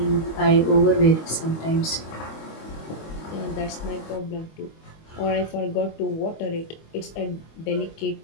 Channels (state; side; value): late; right; 25 ms